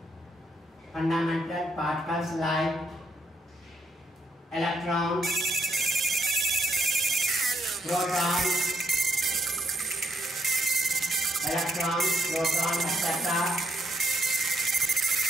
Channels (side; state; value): both; normal; correlation 0.74